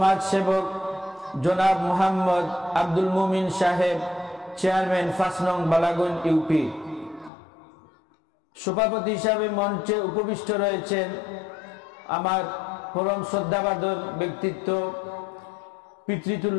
জনাব মোহাম্মদ আব্দুল মুমিন সাহেব, চেয়ারম্যান 5 নং বালাগঞ্জ ইউপি। সভাপতি হিসাবে মঞ্চে উপবিষ্ট রয়েছেন আমার পরম শ্রদ্ধাভাজন ব্যক্তিত্ব,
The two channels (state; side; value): drops out; right; at 7.3 s